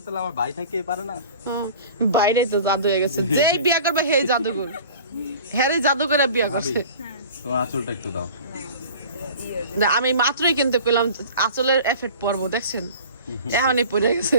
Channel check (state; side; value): inverted; both; correlation -0.42